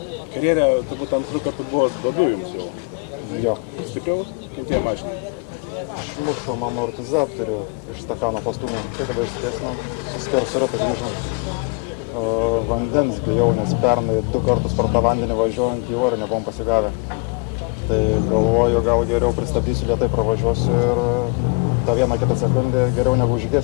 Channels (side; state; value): right; quieter; 31.4 dB